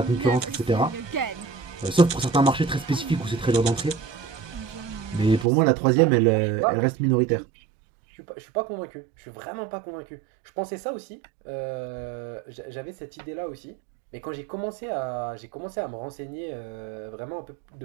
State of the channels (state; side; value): drops out; left; at 5.5 s